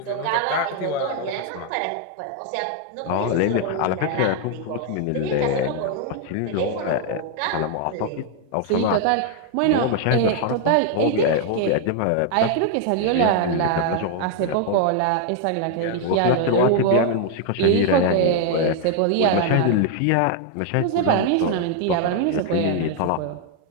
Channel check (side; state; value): both; different; correlation 0.00